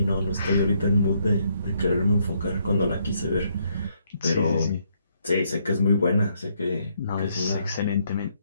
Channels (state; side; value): inverted; both; correlation -0.73